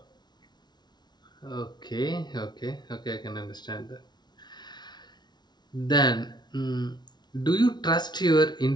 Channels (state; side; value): late; right; 0.20 ms